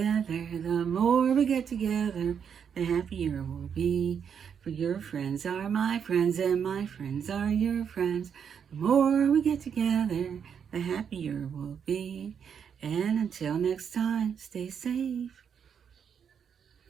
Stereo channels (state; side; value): quieter; left; 7.5 dB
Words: more we get together, the happier we'll be. For your friends are my friends, and my friends are your friends. The more we get together, the happier we'll be. And until next time, stay safe.